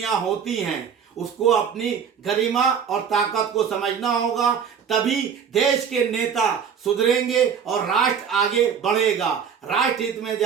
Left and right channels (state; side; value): quieter; left; 7.3 dB